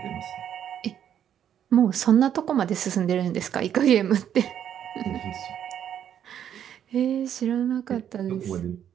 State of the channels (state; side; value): quieter; left; 9.6 dB